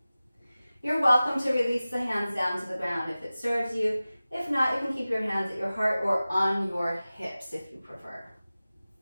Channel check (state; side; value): inverted; both; correlation -0.97